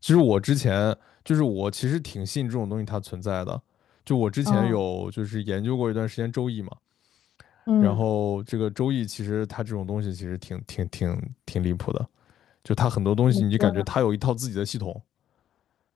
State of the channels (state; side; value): quieter; right; 10.8 dB